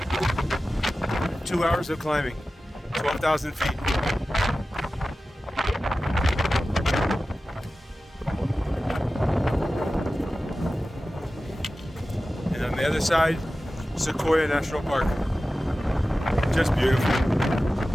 2 hours of climbing, 12,000 feet. And on the other side, Sequoia National Park. Just beautiful.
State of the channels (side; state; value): both; normal; correlation 0.95